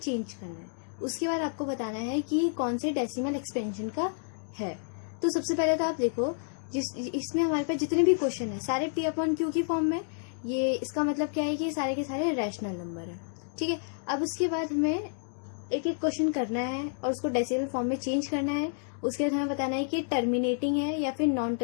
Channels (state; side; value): silent; right; digital silence